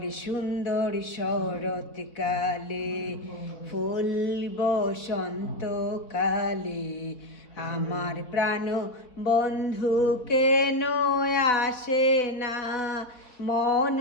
সুন্দর শরৎকালে, ফুল বসন্তকালে, আমার প্রাণ বন্ধু কেন আসে না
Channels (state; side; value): late; right; 4.1 ms